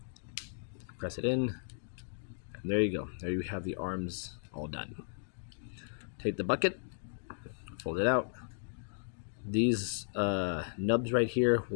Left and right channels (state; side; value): silent; right; digital silence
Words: Press it in. And there you go. There you have the arms all done. Take the bucket. Fold it out. These nubs right here